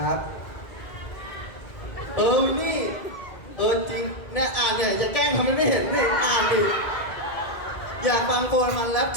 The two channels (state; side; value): late; right; 2.0 ms